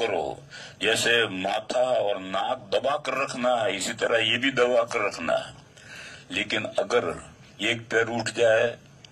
جیسے ماتھا اور ناک دبا کر رکھنا ہے، اسی طرح یہ بھی دبا کر رکھنا ہے. لیکن اگر ایک پیر اٹھ جائے،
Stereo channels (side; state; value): both; identical; correlation 1.00